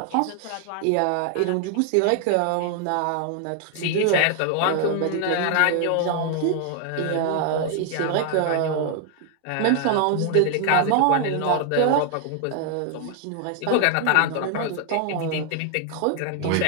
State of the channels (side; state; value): both; different; correlation 0.00